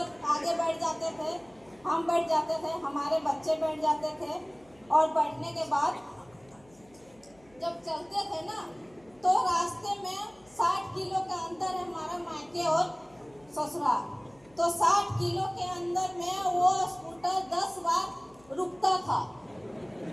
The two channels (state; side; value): noise; left; hum, 29 dB below the sound